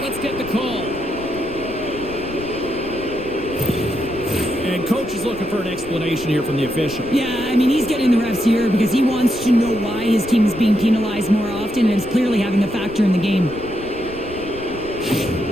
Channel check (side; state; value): left; noise; rumble, 16 dB below the sound